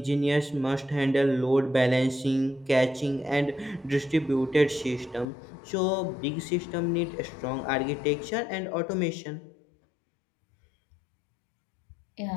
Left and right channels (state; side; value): drops out; right; at 5.2 s